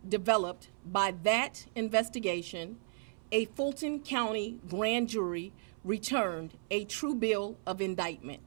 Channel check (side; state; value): left; silent; 55 dB below the other